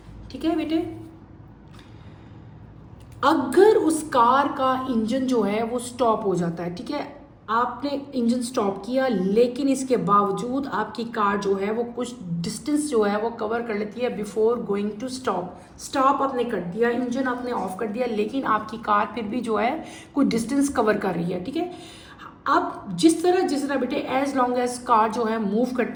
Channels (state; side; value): identical; both; correlation 1.00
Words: ठीक है बेटे, अगर उस कार का इंजन जो है वो स्टॉप हो जाता है, ठीक है, आपने इंजन स्टॉप किया, लेकिन इसके बावजूद आपकी कार जो है वो कुछ डिस्टेंस जो है वो कवर कर लेती है बिफोर गोइंग टू स्टॉप आपने कर दिया, इंजन आपने ऑफ कर दिया, लेकिन आपकी कार फिर भी जो है कुछ डिस्टेंस कवर कर रही है. ठीक है, अब जिस तरह बेटे एज लॉन्ग एज कार जो है मूव